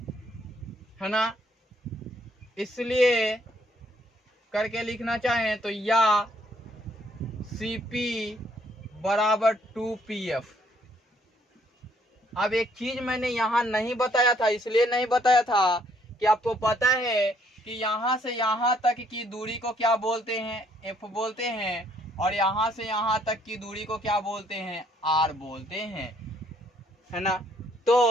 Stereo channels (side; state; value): both; normal; correlation 0.67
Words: है ना। इसलिए करके लिखना चाहें तो या CP बराबर 2PF। अब एक चीज मैंने यहाँ नहीं बताया था, इसलिए नहीं बताया था कि आपको पता है कि यहाँ से यहाँ तक की दूरी को क्या बोलते हैं, F बोलते हैं, और यहाँ से यहाँ तक की दूरी को क्या बोलते हैं, R बोलते हैं, है ना।